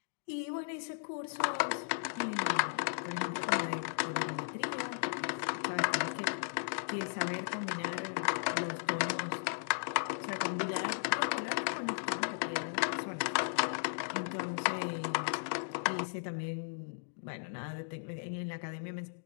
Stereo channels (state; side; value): silent; right; digital silence